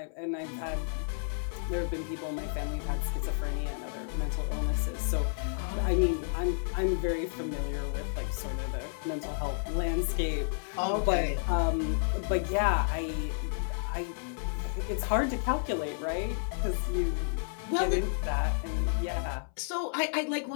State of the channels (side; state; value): right; silent; 57 dB below the other